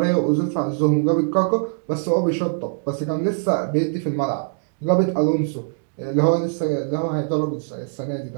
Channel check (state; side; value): silent; left; digital silence